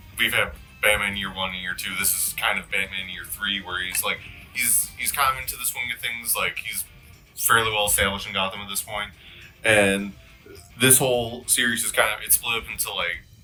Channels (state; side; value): identical; both; correlation 1.00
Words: we've had Batman Year 1 and Year 2. This is kind of Batman Year 3, where he's kind of into the swing of things. Like, he's fairly well established in Gotham at this point. And this whole series is it's split up into I